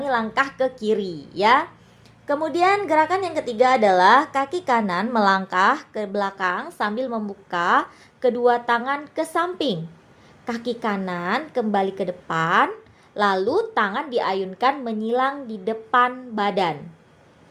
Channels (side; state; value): both; identical; correlation 1.00